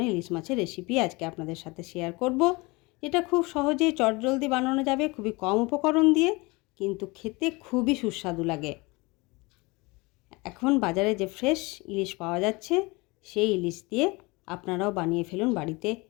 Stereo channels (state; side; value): quieter; right; 25.0 dB